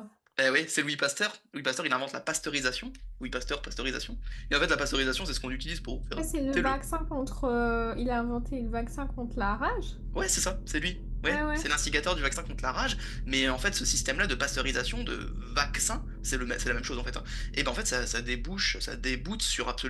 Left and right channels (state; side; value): identical; both; correlation 1.00